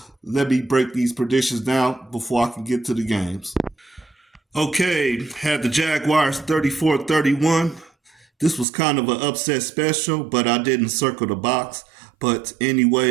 Let me break these predictions down before I can get to the games. Okay, had the Jaguars 34-31. This was kind of an upset special, but I didn't circle the box. But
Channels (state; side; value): drops out; left; at 8.7 s